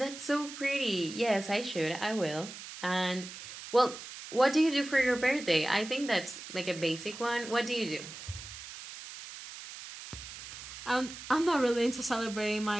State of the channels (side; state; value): right; noise; hiss, 12 dB below the sound